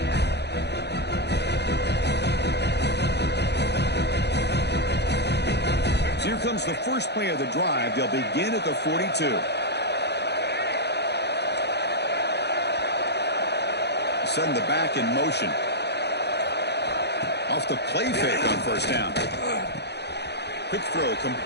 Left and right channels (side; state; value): right; late; 0.49 ms